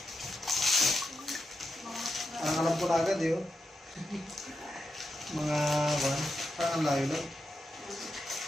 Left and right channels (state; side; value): normal; both; correlation 0.87